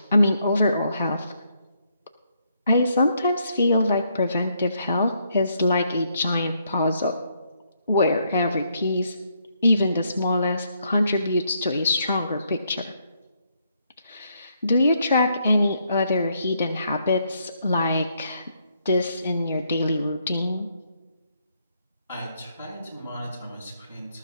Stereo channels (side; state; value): both; inverted; correlation -0.74